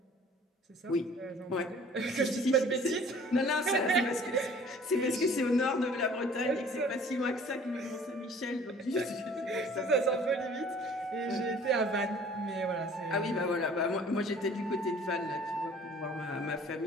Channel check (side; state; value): both; normal; correlation 0.51